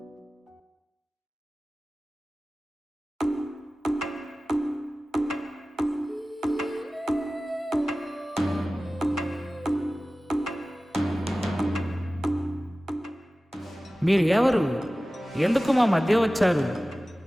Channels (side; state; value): both; normal; correlation 0.97